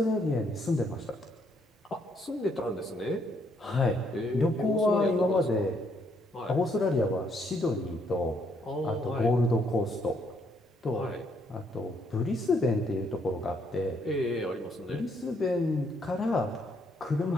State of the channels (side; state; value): both; normal; correlation 0.71